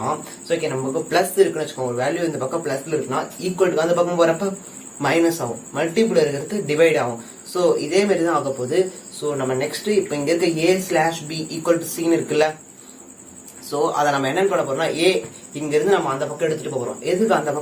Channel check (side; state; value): both; identical; correlation 1.00